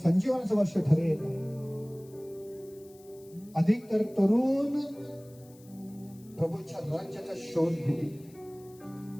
वर्ष ठरेल. अधिक तर तरुण प्रभूच्या राज्याचा शोध घेतील.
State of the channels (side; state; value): left; noise; hiss, 26 dB below the sound